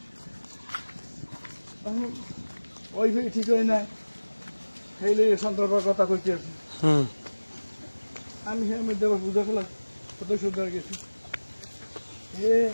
এখন ওয়াইফাই ঠিক হয় না সেইলে সন্ধ্যার পর কথা কইতে আছি আমি হ্যাঁ মধ্যে আবার বুঝা ফেলাম কত সুন্দর গেছি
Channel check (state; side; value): inverted; both; correlation -1.00